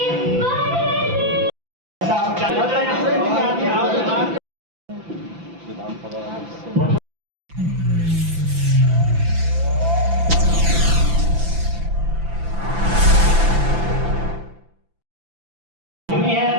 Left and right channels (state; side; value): late; left; 5.9 ms